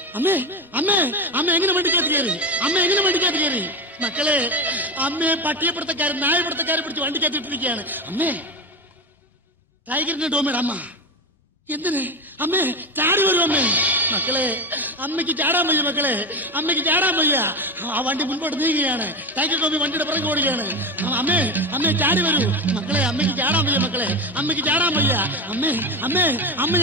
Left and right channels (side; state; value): both; normal; correlation 0.18